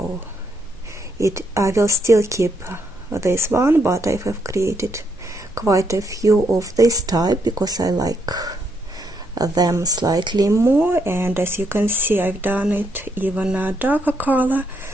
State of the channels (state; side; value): normal; both; correlation 0.76